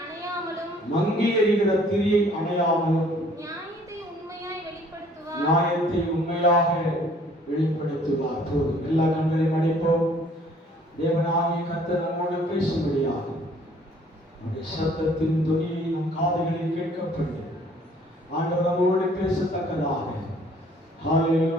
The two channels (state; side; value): normal; both; correlation 0.58